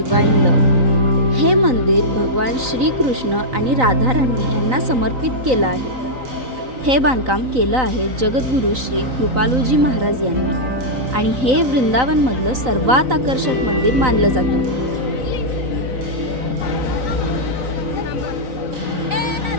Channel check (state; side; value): late; left; 3.9 ms